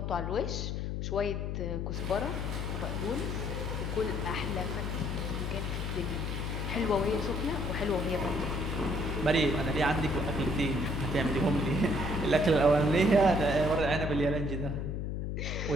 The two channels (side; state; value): left; noise; hum, 2 dB below the sound